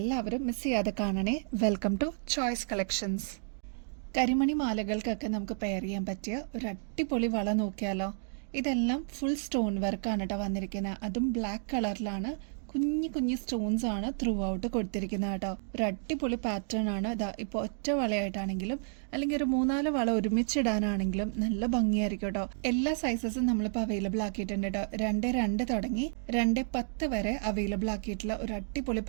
മിസ് ചെയ്യാതെ കാണണേ. Welcome to choice collections. കരിമണി മാലകൾക്കൊക്കെ നമുക്ക് പെയർ ചെയ്യാൻ പറ്റിയ ഒരു അടിപൊളി വള നോക്കിയാലോ. ഇതെല്ലാം ഫുൾ സ്റ്റോൺ വർക്കാണ് കേട്ടോ വന്നിരിക്കുന്നത്. അതും ബ്ലാക്ക് കളറിലാണ്. കുഞ്ഞു കുഞ്ഞു സ്റ്റോൺസ് ആണ് ത്രൂ ഔട്ട് കൊടുത്തിരിക്കുന്നത് കേട്ടോ. ഒരു അടിപൊളി പാറ്റേൺ ആണ്. ഇതാ ഇപ്പോൾ ഒറ്റ വളയായിട്ടാണെങ്കിലും അല്ലെങ്കിൽ ഒരു 3-4 വള ഒരുമിച്ചിടാനാണെങ്കിലും നല്ല ഭംഗിയായിരിക്കും കേട്ടോ. എല്ലാ സൈസസും നമ്മളിപ്പോൾ അവൈലബിൾ ആക്കിയിട്ടുണ്ട് കേട്ടോ. 2.2 തുടങ്ങി 2.10 വരെ അവൈലബിൾ ആക്കിയിട്ടുള്ള ഒരു അടിപൊളി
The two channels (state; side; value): silent; left; digital silence